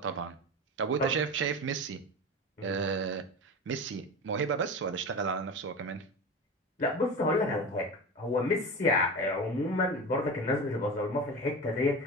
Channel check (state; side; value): normal; both; correlation 0.27